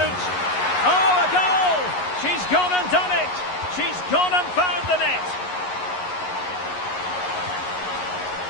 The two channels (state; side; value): late; right; 11 ms